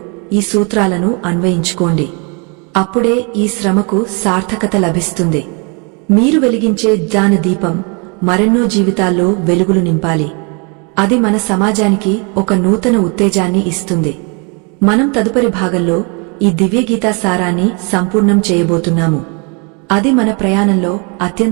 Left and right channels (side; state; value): left; quieter; 33.7 dB